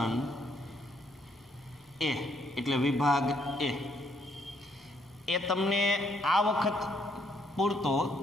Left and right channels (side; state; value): both; normal; correlation 0.71